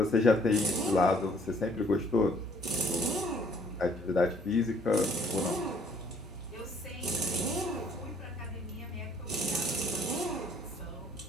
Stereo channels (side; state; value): both; normal; correlation 0.61